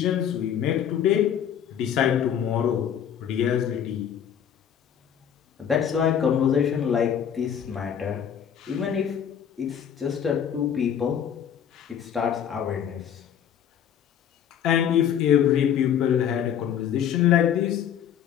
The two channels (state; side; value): quieter; right; 9.0 dB